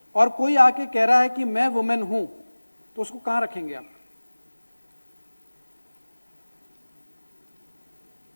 और कोई आके कह रहा है कि मैं वुमेन हूं, तो उसको कहां रखेंगे आप?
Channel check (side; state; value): both; inverted; correlation -1.00